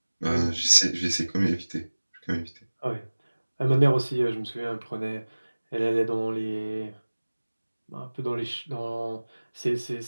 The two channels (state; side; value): inverted; both; correlation -1.00